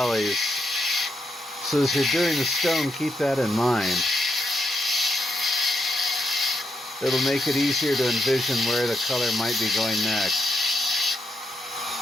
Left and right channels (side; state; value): both; normal; correlation 0.81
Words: So as you're doing the stone, keep that in mind. It'll make it easier to envision where the color might be going next.